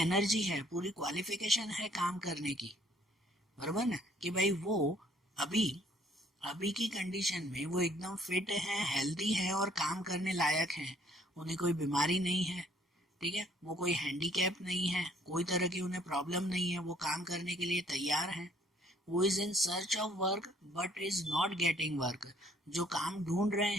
है, पूरी क्वालिफिकेशन है काम करने की, बराबर ना। कि भाई वो अभी अभी की कंडीशन में वो एकदम फिट है, हेल्दी है और काम करने लायक है। उन्हें कोई बीमारी नहीं है, ठीक है, वो कोई हैंडीकैप नहीं है, कोई तरह की उन्हें प्रॉब्लम नहीं है, वो काम करने के लिए तैयार है। वो is in search of work but is not getting work, जो काम ढूंढ रहे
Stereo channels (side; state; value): both; normal; correlation 0.62